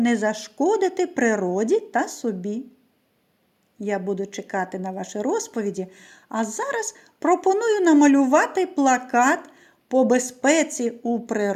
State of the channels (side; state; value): both; identical; correlation 1.00